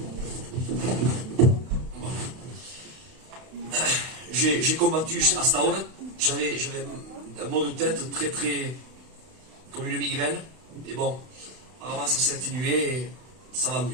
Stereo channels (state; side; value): late; left; 32 ms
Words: combattu à cette heure. J'avais un mot de tête très comme une migraine. Et bon, apparemment ça s'est atténué et ça va